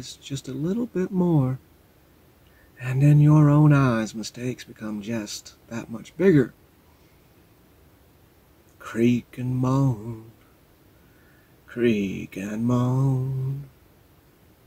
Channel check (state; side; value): identical; both; correlation 1.00